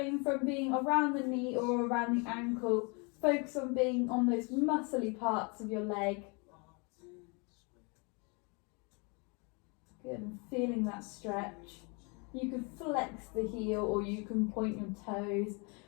from being around the knee or around the ankle. Focus on being on those muscly parts of your leg. Good, and feeling that stretch. You can flex the heel or you can point your toes,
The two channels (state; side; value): quieter; right; 32.3 dB